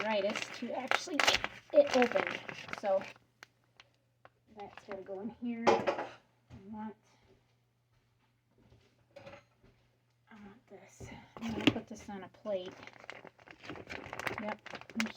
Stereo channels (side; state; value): both; identical; correlation 1.00